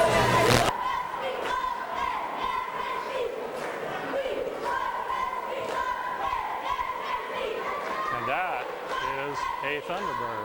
And that is a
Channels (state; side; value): identical; both; correlation 1.00